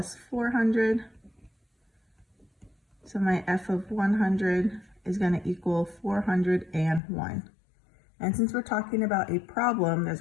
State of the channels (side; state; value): right; drops out; at 7.0 s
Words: 400. So my f of 100 is going to equal 401. And since we're talking about a problem, there's